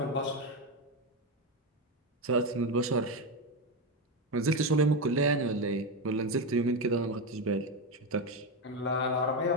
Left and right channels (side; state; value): both; normal; correlation 0.12